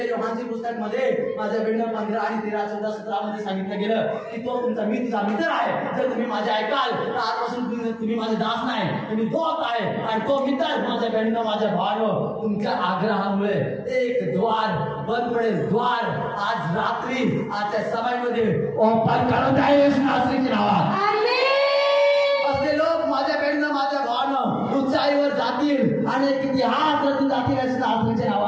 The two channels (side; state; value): both; identical; correlation 1.00